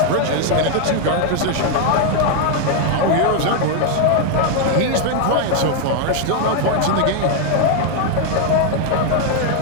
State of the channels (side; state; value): both; different; correlation 0.00